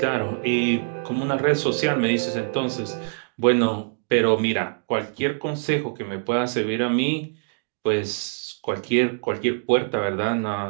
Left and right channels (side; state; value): left; silent; digital silence